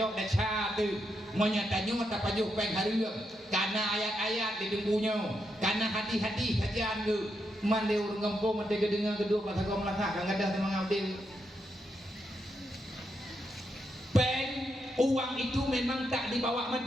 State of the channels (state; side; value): normal; both; correlation 0.82